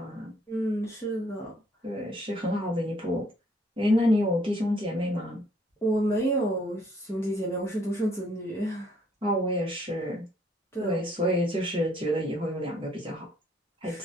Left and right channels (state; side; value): normal; both; correlation 0.65